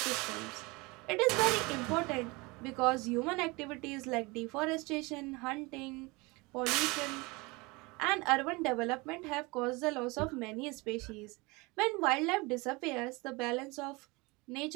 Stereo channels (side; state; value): left; quieter; 25.1 dB